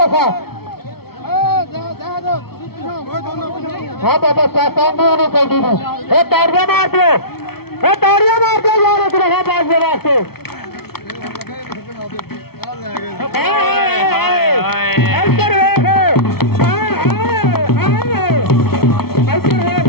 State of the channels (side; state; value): right; late; 0.95 ms